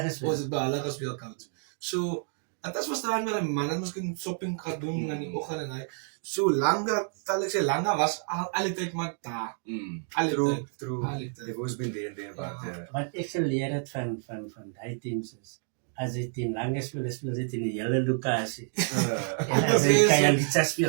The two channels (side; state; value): left; silent; 57 dB below the other